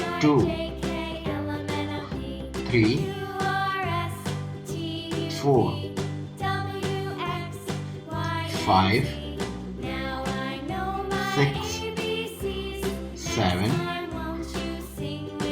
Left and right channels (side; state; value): both; identical; correlation 1.00